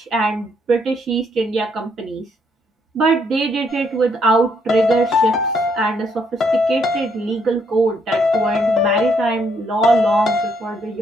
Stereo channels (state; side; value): normal; both; correlation 0.71